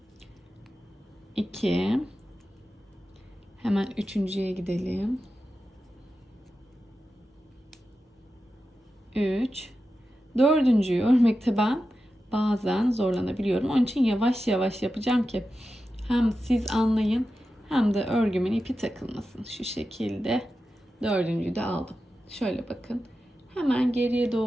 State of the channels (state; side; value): normal; both; correlation 0.91